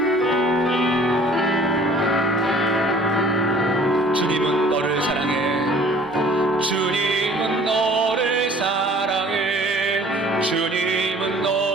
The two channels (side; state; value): both; normal; correlation 0.51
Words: 주님은 너를 사랑해. 주님은 너를 사랑해. 주님은